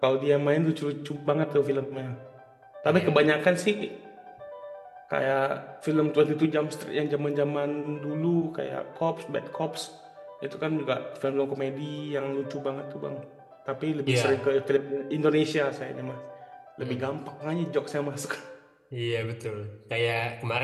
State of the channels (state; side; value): identical; both; correlation 1.00